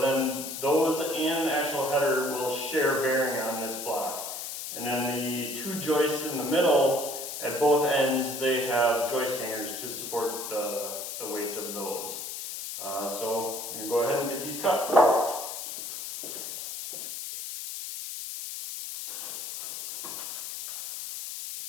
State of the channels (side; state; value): left; noise; hiss, 7 dB below the sound